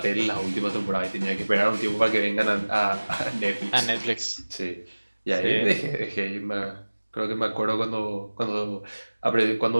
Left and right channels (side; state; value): both; inverted; correlation -1.00